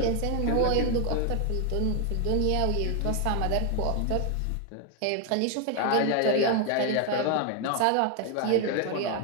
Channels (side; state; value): both; different; correlation 0.01